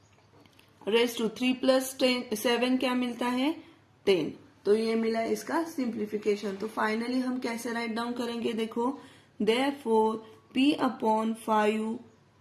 रेज टू 3 + 7 क्या मिलता है 10। तो ये मिला इसका सिंप्लीफिकेशन। तो फाइनली हम कैसे राइट डाउन करेंगे, देखो therefore p/5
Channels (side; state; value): both; identical; correlation 1.00